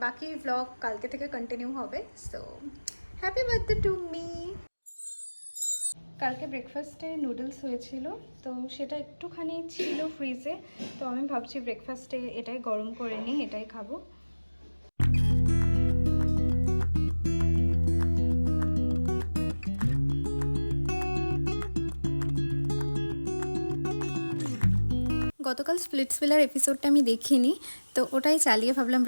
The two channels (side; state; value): both; inverted; correlation -1.00